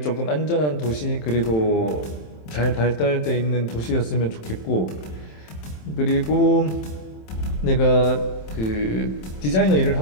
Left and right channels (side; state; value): right; late; 27 ms